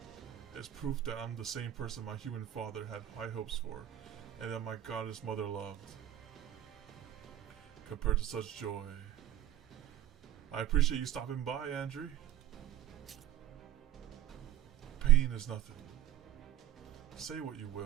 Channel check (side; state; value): left; quieter; 12.5 dB